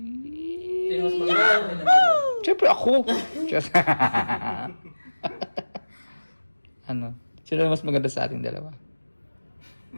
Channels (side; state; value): both; inverted; correlation -1.00